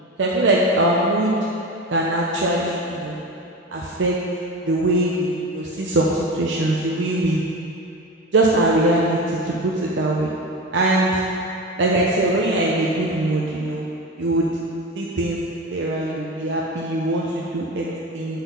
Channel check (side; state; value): both; normal; correlation 0.26